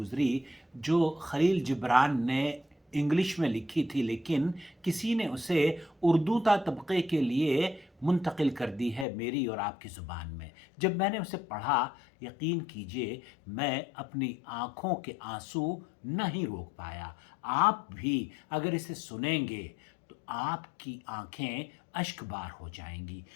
جو خلیل جبران نے انگلش میں لکھی تھی، لیکن کسی نے اسے اردو تا طبقے کے لیے منتقل کر دی ہے میری اور آپ کی زبان میں۔ جب میں نے اسے پڑھا، یقین کیجئے میں اپنی آنکھوں کے آنسو نہیں روک پایا۔ آپ بھی اگر اسے سنیں گے تو آپ کی آنکھیں اشک بار ہو جائیں گی۔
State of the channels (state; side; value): drops out; right; at 9.1 s